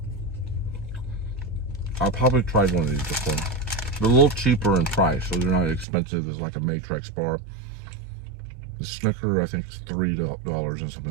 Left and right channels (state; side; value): drops out; left; at 5.9 s